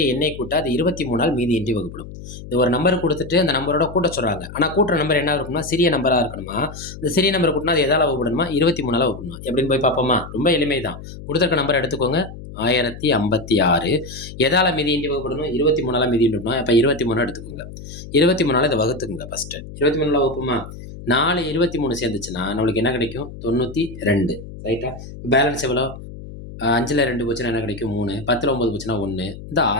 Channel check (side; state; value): left; noise; hum, 13 dB below the sound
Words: எண்ணை கூட்ட அது 23ஆல் மீதியின்றி வகுப்படும். இது ஒரு நம்பர் குடுத்துட்டு அந்த நம்பரோட கூட்ட சொல்றாங்க. ஆனா கூட்டுற நம்பர் என்ன இருக்கணும்னா, சிறிய நம்பரா இருக்கணுமா. இந்த சிறிய நம்பர் கூட்டுனா அது எதால வகுப்படணுமா? 23ஆல வகுப்படணுமா? எப்படின்னு போய் பார்ப்போமா? ரொம்ப எளிமைதான். குடுத்திருக்க நம்பர் எடுத்துக்கோங்க. 1056 எதால மீதியின்றி வகுப்படணும்? 23ஆல மீதியின்றி வகுப்படணும். அப்ப 23 எடுத்துக்கோங்க. 23ஆல இத வகுத்துக்கங்க ஃபர்ஸ்ட்டு. 23ஆல வகுப்போமா? 4 23 சேர்ந்துச்சுன்னா, நம்மளுக்கு என்ன கிடைக்கும்? 92 ரைட்டா? பேலன்ஸ் எவ்வளோ? 5ல 2 போச்சுன்னா என்ன கிடைக்கும்? 3. 10ல 9 போச்சுன்னா 1. இந்த